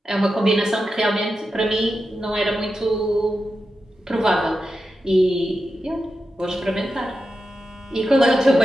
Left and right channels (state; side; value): normal; both; correlation 0.90